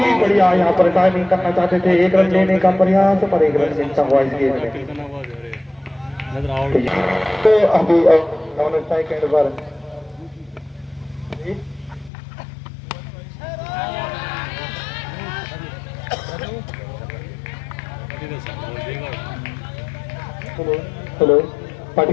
बढ़िया यहाँ पर टाइमिंग करना चाहते थे 1 रन लेने का प्रयास पर 1 रन मिलता हुआ इस गेंद में। तो अभी सेकंड पर हेलो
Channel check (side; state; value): right; drops out; at 12.1 s